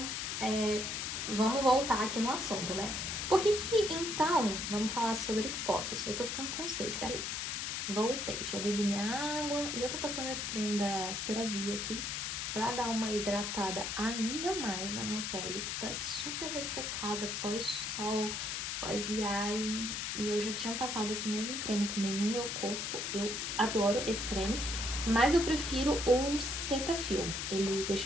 vamos voltar aqui no assunto, né? Por que então, vamos falar sobre fotos. Eu tô ficando com sede, peraí. Voltei, já bebi minha água e eu tô passando esse creme da CeraVe aqui pra dar uma hidratada ainda mais na minha pele, que tá super ressecada pós-sol, pós-viagem. E eu já tinha passado esse mesmo creme também no meu corpo, eu adoro esse creme, mas eu prefiro o Cetaphil, ele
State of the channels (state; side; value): noise; left; hiss, 2 dB below the sound